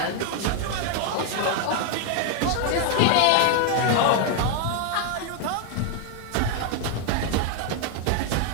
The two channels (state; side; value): different; both; correlation 0.01